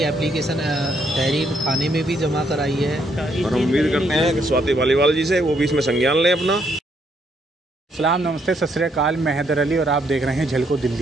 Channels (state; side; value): normal; both; correlation 0.73